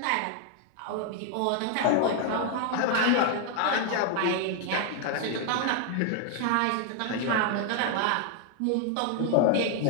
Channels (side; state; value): both; different; correlation 0.00